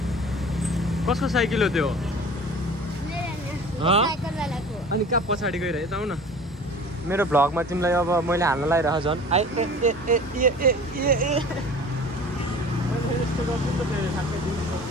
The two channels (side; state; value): both; normal; correlation 0.42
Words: कसको साइकल हो त्यो अनि कहाँ पछाडि गइरहे त आउ न मेरो भ्लगमा तिमीलाई अब मैले हाल्न लागिरह झन्